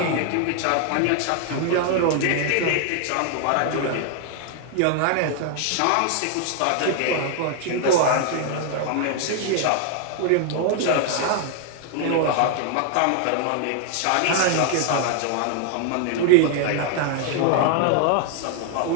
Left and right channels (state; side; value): different; both; correlation 0.00